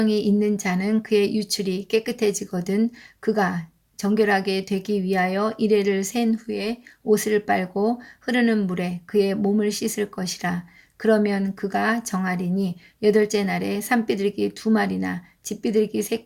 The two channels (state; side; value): identical; both; correlation 1.00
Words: 있는 자는 그의 유출이 깨끗해지거든 그가 정결하게 되기 위하여 이레를 센 후에 옷을 빨고 흐르는 물에 그의 몸을 씻을 것이라. 그러면 그가 정하리니 여덟째 날에 산비둘기 2마리나 집비둘기